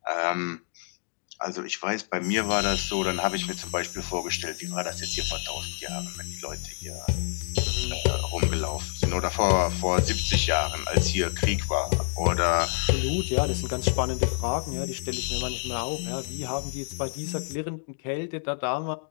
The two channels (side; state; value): right; silent; digital silence